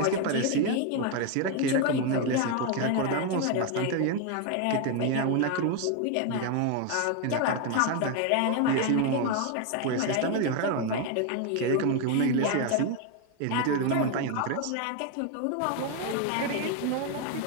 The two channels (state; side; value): different; both; correlation 0.01